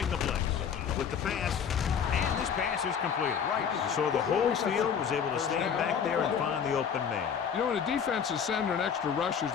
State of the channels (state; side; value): quieter; right; 7.4 dB